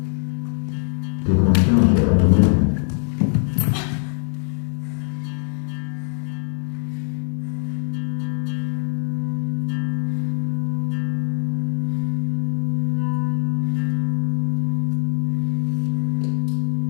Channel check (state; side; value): silent; right; digital silence